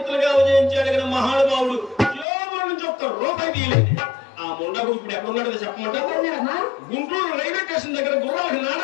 ఉదయించాడు కదా మహానుభావుడు జోబుల నుంచి ఒక్క రూపాయి తీయలేదు. ఆ ముండకు ఇప్పుడు ఎక్కడున్నాడో చెప్పమంటారు. ఎక్కడున్నాడమ్మా? గుంటూరు రైల్వే స్టేషన్ దగ్గర గుర్రాలకి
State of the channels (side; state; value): right; drops out; at 2.2 s